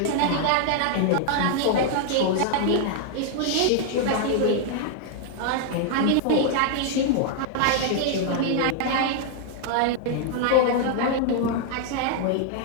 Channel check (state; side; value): different; both; correlation 0.00